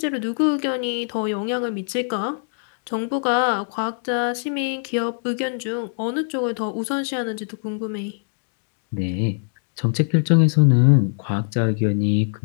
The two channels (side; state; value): right; silent; digital silence